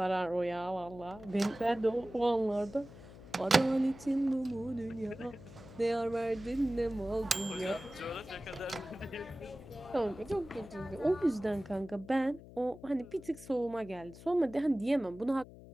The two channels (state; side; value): noise; left; hum, 17 dB below the sound